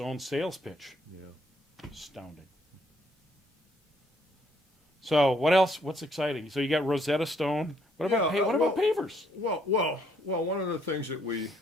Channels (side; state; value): both; normal; correlation 0.68